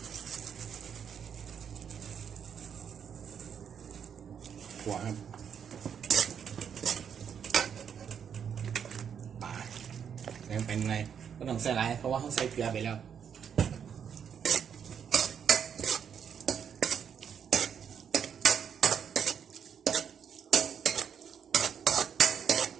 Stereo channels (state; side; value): quieter; left; 7.8 dB